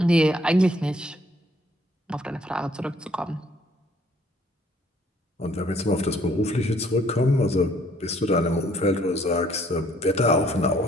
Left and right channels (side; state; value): both; normal; correlation 0.62